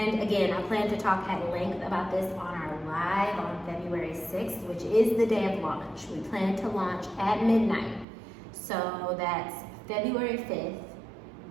again, I plan to talk at length about this on our live on February 6th, which is the day of launch. We plan to launch at midnight. So that's February 5th,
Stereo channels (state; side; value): drops out; left; at 8.1 s